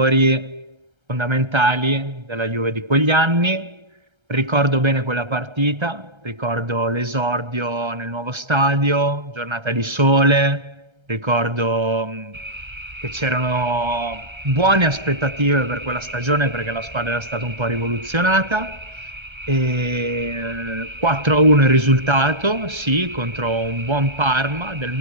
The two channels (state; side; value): late; left; 1.3 ms